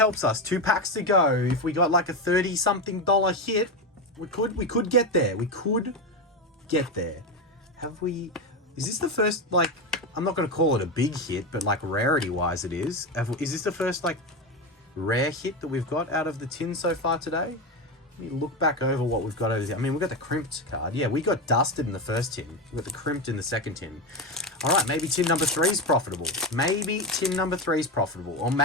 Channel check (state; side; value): normal; both; correlation 0.15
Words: us. 2 packs to go. If we got like a $30-something hit, we could get there. We could get there. Have we? Is this the first, like, I'm not going to call it a big hit, but like rarity-wise it is. Is this the first, like, rare hit that we've got out of the tin so far today? Let me look back over what we've got over there. I mean, we got the crimped card. Yeah, we got dusted in the first tin. We got the crimped in the second tin. All right, maybe tin number 3 is profitable. Maybe tin number 3 is profitable. Or